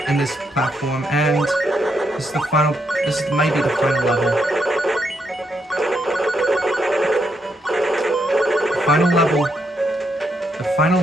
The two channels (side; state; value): both; normal; correlation 0.78